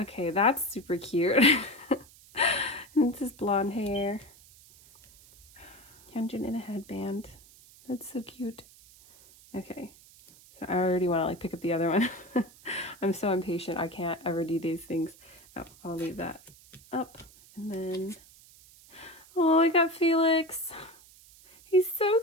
Okay, that's super cute. And this is blonde hair. Hyunjin in a headband. That's so cute. Okay, so I already want to like pick up the other one. I'm so impatient. I can't ever do these things. Oh, I'll leave that up. And then, oh, I got Felix. He's so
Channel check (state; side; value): noise; right; hiss, 24 dB below the sound